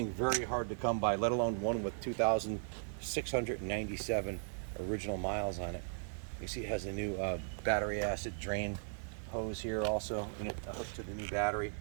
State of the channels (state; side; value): silent; left; digital silence